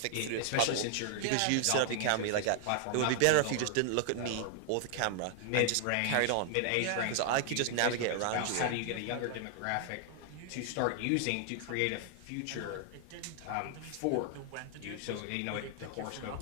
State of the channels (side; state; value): both; different; correlation 0.00